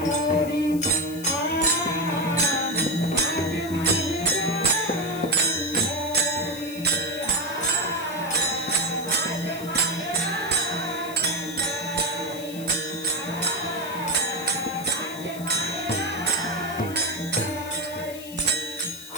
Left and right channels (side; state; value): left; noise; hiss, 15 dB below the sound